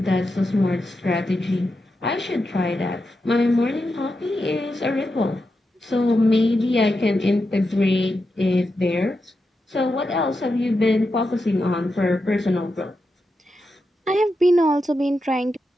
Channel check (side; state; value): both; normal; correlation 0.88